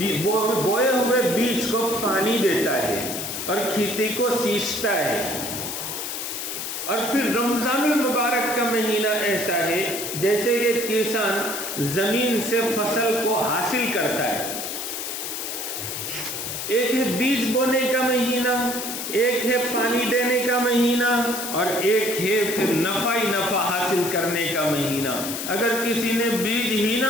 بوئے ہوئے بیج کو پانی دیتا ہے اور کھیتی کو سینچتا ہے، اور پھر رمضان المبارک کا مہینہ ایسا ہے جیسے کہ کسان زمین سے فصل کو حاصل کرتا ہے۔ ایک ہے بیج بونے کا مہینہ، ایک ہے پانی دینے کا مہینہ، اور ایک ہے پھر نفع ہی نفع حاصل کرنے کا مہینہ۔ اگر کسی نے بیج ہی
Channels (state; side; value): noise; left; hiss, 5 dB below the sound